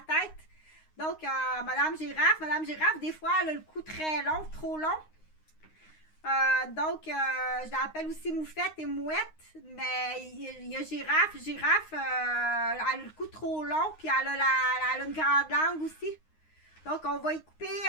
tête. Donc, Madame Girafe, des fois, elle a le cou très long, trop long. Donc, je l'appelle aussi moufette et mouette, mais il y a girafe. Girafe, elle a le cou trop long, puis elle a une grande langue aussi. Donc, on va y couper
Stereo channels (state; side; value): late; right; 9.6 ms